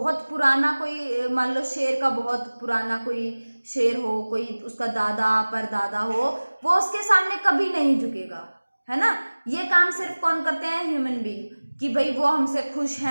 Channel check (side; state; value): both; inverted; correlation -1.00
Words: पुराना, कोई मान लो शेर का बहुत पुराना कोई शेर हो, कोई उसका दादा परदादा हो, वो उसके सामने कभी नहीं झुकेगा, है ना। ये काम सिर्फ कौन करते हैं? ह्यूमन बीइंग, कि भाई वो हमसे खुश